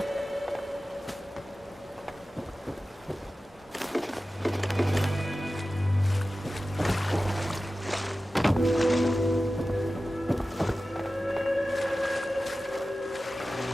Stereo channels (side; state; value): both; normal; correlation 0.95